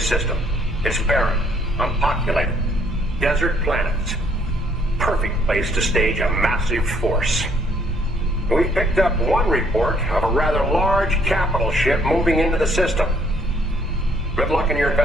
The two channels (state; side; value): normal; both; correlation 0.65